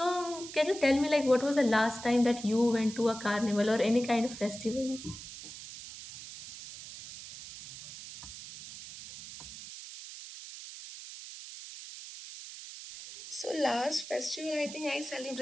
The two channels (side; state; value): right; noise; hiss, 13 dB below the sound